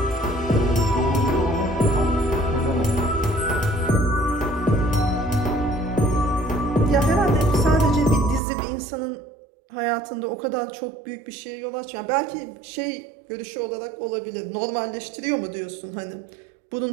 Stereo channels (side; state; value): left; drops out; at 8.4 s